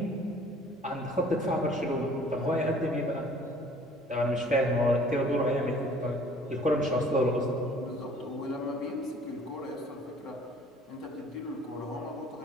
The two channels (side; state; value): both; normal; correlation 0.53